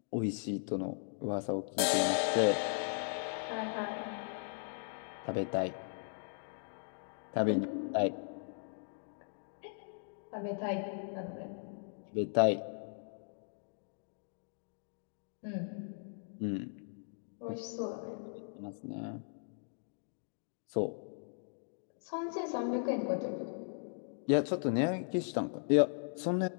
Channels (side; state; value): right; silent; digital silence